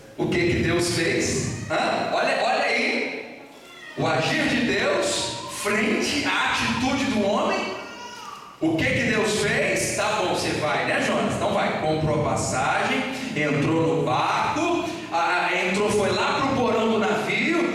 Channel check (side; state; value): both; identical; correlation 1.00